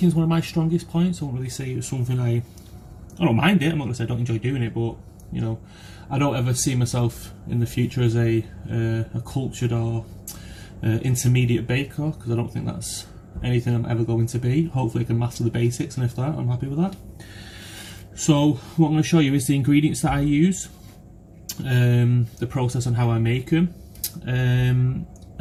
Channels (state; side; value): identical; both; correlation 1.00